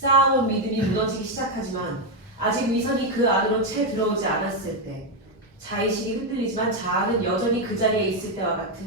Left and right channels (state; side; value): normal; both; correlation 0.05